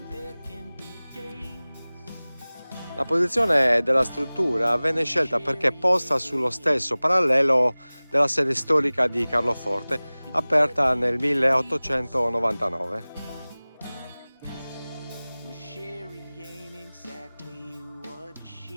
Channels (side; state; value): both; inverted; correlation -0.99